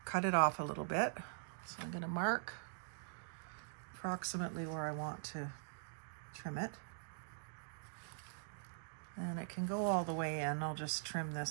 cut it off a little bit. So I'm going to mark approximately where I want to trim it. And it can go all the way in. I'll just trim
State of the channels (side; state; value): left; silent; digital silence